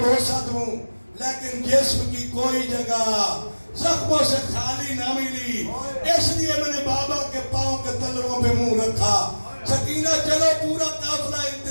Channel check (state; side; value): inverted; both; correlation -1.00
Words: بوسہ دوں, لیکن جسم کی کوئی جگہ زخموں سے خالی نہ ملی, اس لیے میں نے بابا کے پاؤں کے تلووں پہ منہ رکھا. سکینہ چلو, پورا قافلہ